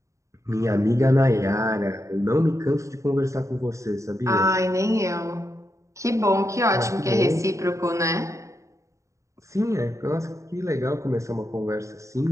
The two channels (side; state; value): left; late; 0.15 ms